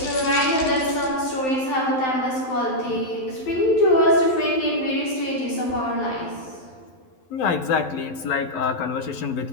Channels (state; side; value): late; right; 12 ms